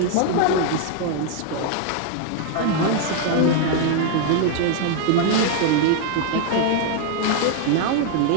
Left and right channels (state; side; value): different; both; correlation 0.00